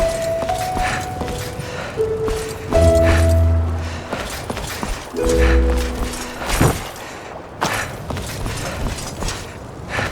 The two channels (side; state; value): both; identical; correlation 1.00